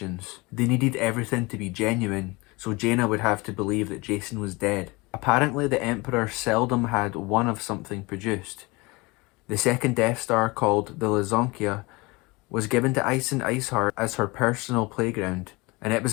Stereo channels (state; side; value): quieter; right; 24.6 dB